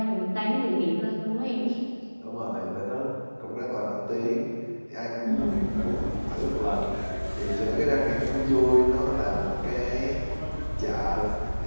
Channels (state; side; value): inverted; both; correlation -1.00